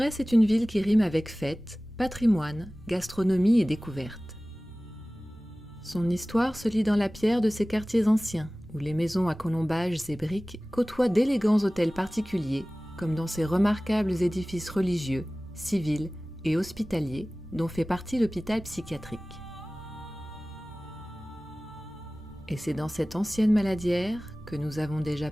est une ville qui rime avec fête, patrimoine, gastronomie et découverte. Son histoire se lit dans la pierre de ses quartiers anciens, où les maisons à colombages et briques côtoient d'élégants hôtels particuliers, comme dans ces remarquables édifices religieux, civils et hospitaliers, dont fait partie l'hôpital psychiatrique. Et c'est dans cette ancienne maladière que nous avons déjà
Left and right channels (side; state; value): both; normal; correlation 0.98